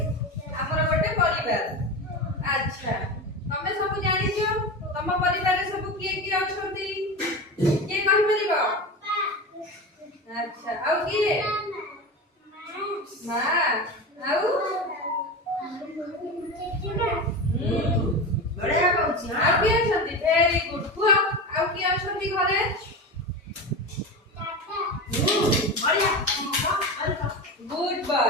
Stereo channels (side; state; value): both; normal; correlation 0.24